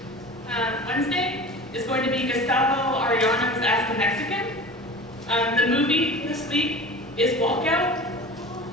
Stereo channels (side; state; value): both; normal; correlation 0.36